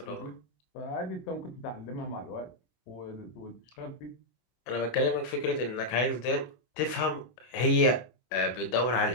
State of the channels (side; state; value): right; late; 24 ms